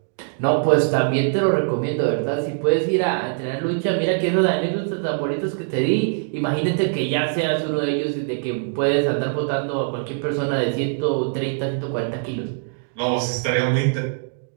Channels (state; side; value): silent; left; digital silence